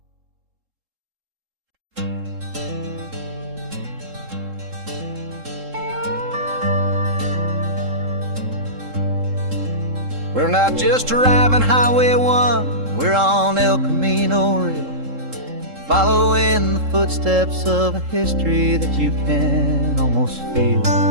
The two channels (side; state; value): left; late; 3.7 ms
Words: We're not just driving Highway 1, we're on El Camino Real, following the footsteps of a history that you can almost feel.